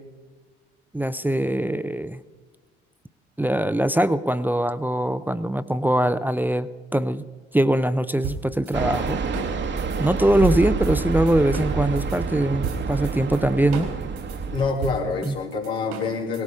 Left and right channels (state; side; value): normal; both; correlation 0.83